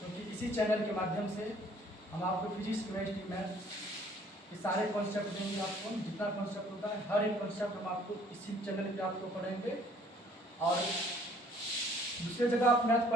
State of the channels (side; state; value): both; normal; correlation 0.58